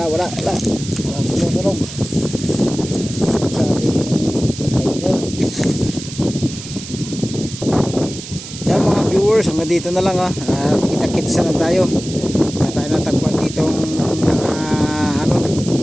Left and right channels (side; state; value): right; noise; hiss, 12 dB below the sound